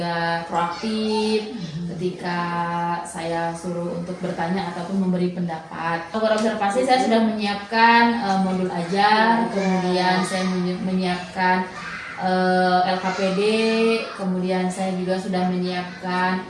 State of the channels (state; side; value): identical; both; correlation 1.00